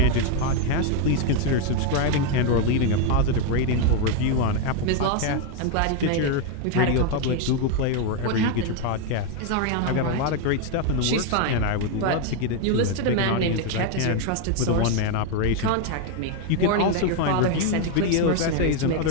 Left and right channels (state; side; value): different; both; correlation 0.01